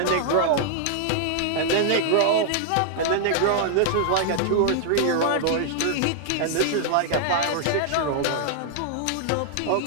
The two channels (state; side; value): different; both; correlation -0.01